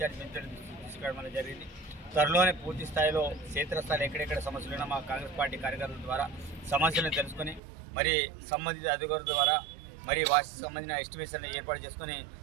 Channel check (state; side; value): drops out; left; at 7.6 s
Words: మంత్రుల దృష్టికి తీసుకురావడం అనేది జరిగింది. త్వరలోనే పూర్తి స్థాయిలో క్షేత్రస్థాయిలో ఎక్కడెక్కడ సమస్యలు ఉన్నా మా కాంగ్రెస్ పార్టీ కార్యకర్తల ద్వారా సమస్యలను తెలుసుకొని మరి సంబంధిత అధికారుల ద్వారా మరి వాటికి సంబంధించిన ఎస్టిమేషన్లు ఏర్పాటు చేసుకొని